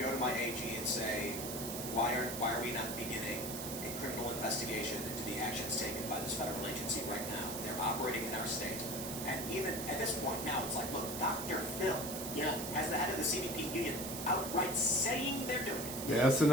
to my AG and say, why are we not beginning a criminal investigation into the actions taken by this federal agency right now? They're operating in our state. And even at this point now, it's like, look, Dr. Phil, as the head of the CBP union, outright saying they're doing it. The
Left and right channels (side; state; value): right; noise; hiss, 6 dB below the sound